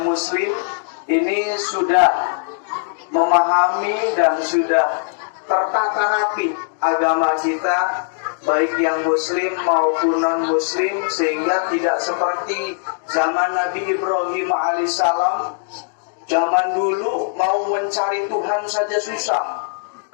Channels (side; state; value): right; silent; digital silence